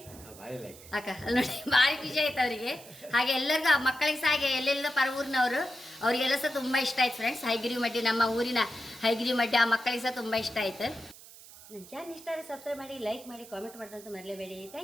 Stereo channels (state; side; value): noise; right; hiss, 19 dB below the sound